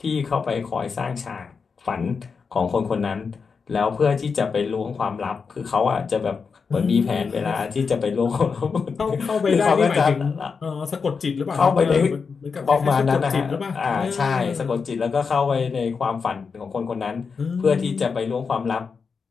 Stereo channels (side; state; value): right; quieter; 5.4 dB